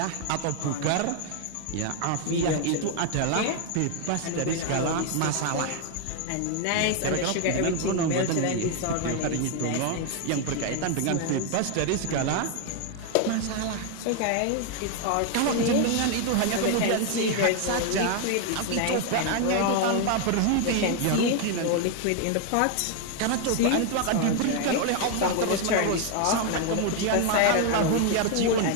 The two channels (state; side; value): different; both; correlation 0.01